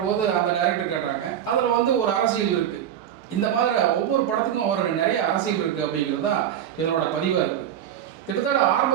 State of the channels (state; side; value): quieter; left; 10.3 dB